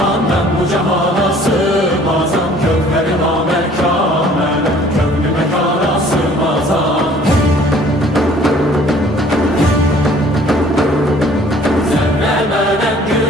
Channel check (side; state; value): both; normal; correlation 0.55